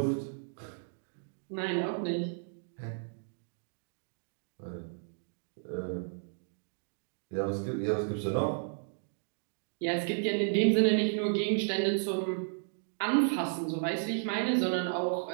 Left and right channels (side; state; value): left; silent; digital silence